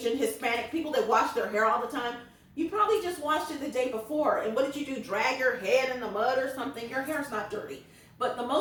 Hispanic, people that wash their hair all the time, you probably just washed it the day before. And what did you do? Drag your head in the mud or something? Your hair's not dirty. But the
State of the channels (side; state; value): both; identical; correlation 1.00